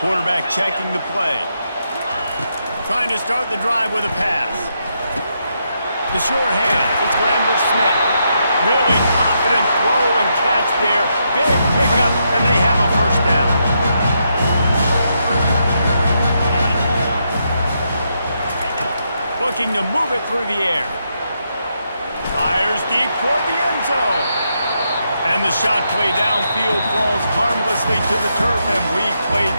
checking the play. Trying to start the drive with a pass. The sure hands. It's Lambert-Smith. Really confident throw and catch there. Big pickup, and they have a first down. Looking to move it through the air. Fires deep toward the end zone. And the shot play downfield falls harmlessly to the turf, and we've played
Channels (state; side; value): inverted; both; correlation -0.80